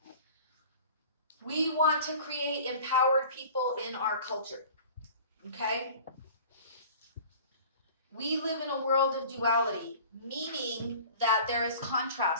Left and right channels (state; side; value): inverted; both; correlation -0.43